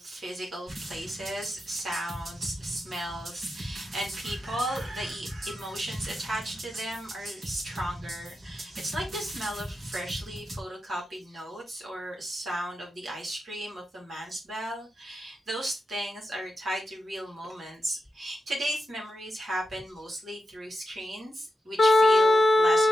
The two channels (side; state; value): both; normal; correlation 0.89